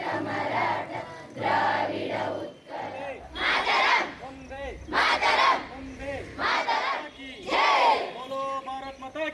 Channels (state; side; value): identical; both; correlation 1.00